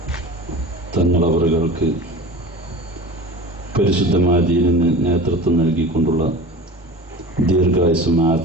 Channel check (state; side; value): normal; both; correlation 0.36